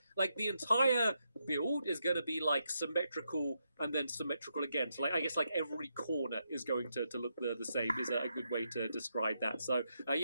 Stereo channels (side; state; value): both; inverted; correlation -0.82